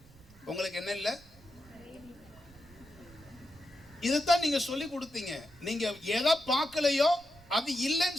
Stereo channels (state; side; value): noise; right; rumble, 24 dB below the sound